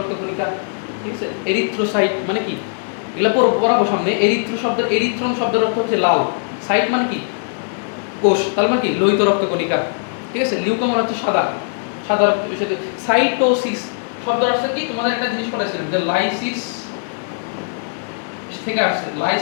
কণিকা, ঠিক আছে? এরিথ্রোসাইট মানে কি? এগুলা পড়াবো সামনে। এরিথ্রন শব্দের অর্থ হচ্ছে লাল। সাইট মানে কি? কোষ, তার মানে কি? লোহিত রক্ত কণিকা, ঠিক আছে? লিউকো মানে হচ্ছে সাদা, সাদা রক্ত। সাইটোসিস শব্দের অর্থ কি? তোমাদের একটা জিনিস পড়াইছিলাম যে লাইসিস থেকে আসছে।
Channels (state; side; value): silent; right; 60 dB below the other